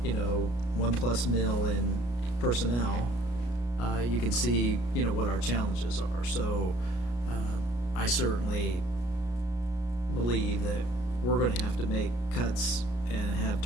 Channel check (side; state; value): right; late; 33 ms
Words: 1+ mil in personnel. You can see, what our challenges are. So, I certainly believe that we're gonna have to make cuts and have